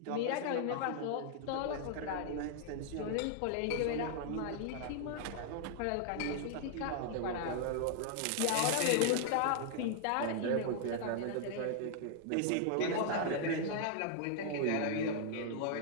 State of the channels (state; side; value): different; both; correlation -0.01